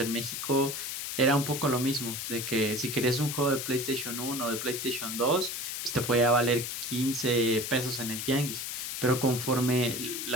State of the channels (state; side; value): noise; left; hiss, 4 dB below the sound